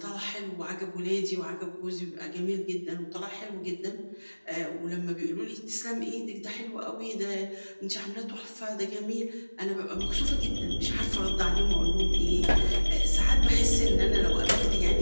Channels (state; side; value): inverted; both; correlation -1.00